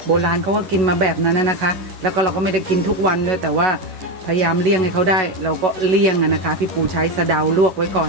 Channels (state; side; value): late; left; 11 ms